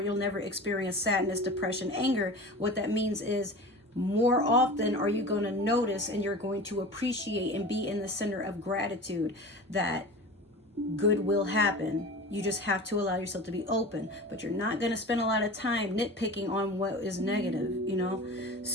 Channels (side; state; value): both; normal; correlation 0.34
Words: you'll never experience sadness, depression, anger. What that means is, more often are you going to notice, and you're going to appreciate and be in the center of gratitude that good will happen. You just have to allow yourself to be open, but you're not going to spend a lot of time nitpicking on what is negative, you know?